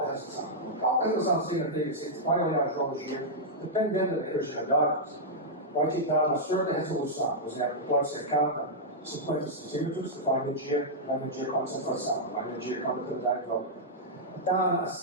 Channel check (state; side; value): normal; both; correlation -0.08